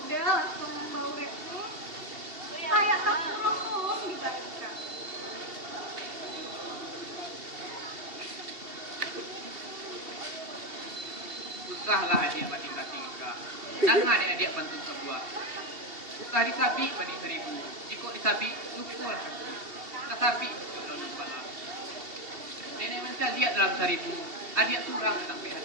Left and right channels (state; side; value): late; left; 2.7 ms